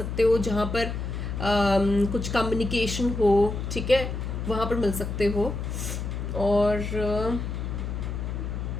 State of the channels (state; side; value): noise; left; hum, 4 dB below the sound